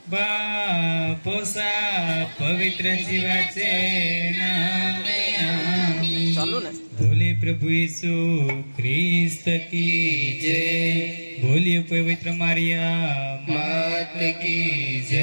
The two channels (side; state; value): both; inverted; correlation -1.00